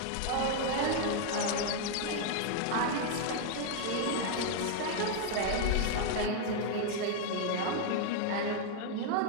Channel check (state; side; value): different; both; correlation 0.00